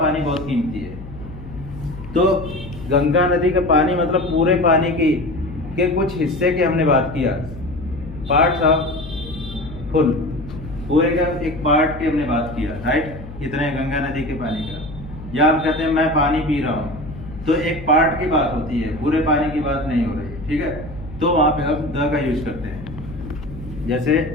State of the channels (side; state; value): left; noise; hum, 13 dB below the sound